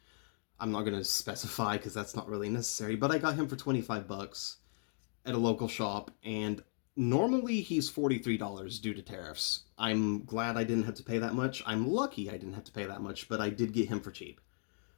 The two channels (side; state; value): right; silent; 53 dB below the other